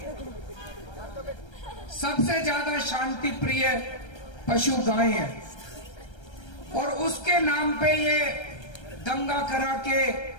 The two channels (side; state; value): right; late; 1.3 ms